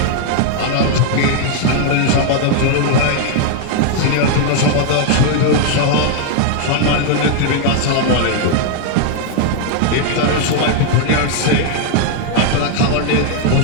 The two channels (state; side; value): different; both; correlation 0.00